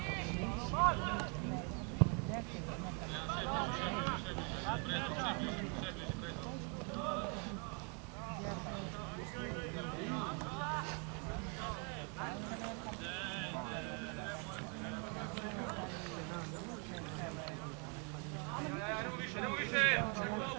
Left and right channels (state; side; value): quieter; left; 36.7 dB